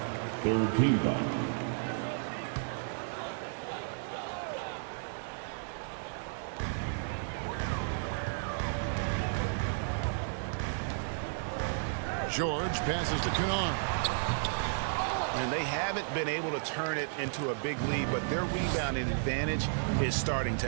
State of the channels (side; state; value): left; silent; digital silence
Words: 3rd team foul. George passes to Kennard. And they haven't been able to turn it into a big lead, but their rebounding advantage is starting